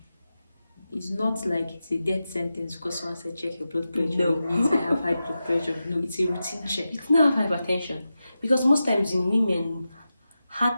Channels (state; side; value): inverted; both; correlation -0.92